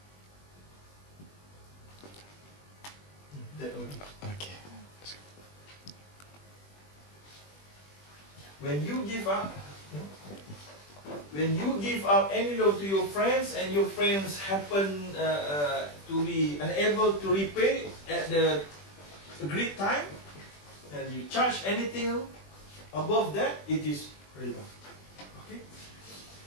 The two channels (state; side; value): late; right; 20 ms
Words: Okay. When you give out any loan to your friends and your friends happen to be unable to repay at the agreed time, and you charge anything above that, it is riba. Okay.